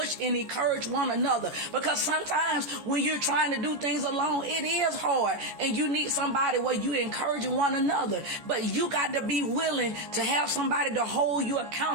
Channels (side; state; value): left; late; 14 ms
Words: and encourage one another. Because sometimes when you're trying to do things alone, it is hard, and you need somebody where you encouraging one another. But you got to be willing to have somebody to hold you